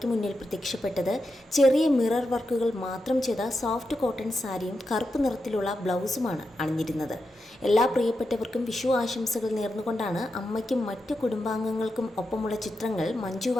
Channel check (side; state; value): both; normal; correlation 0.87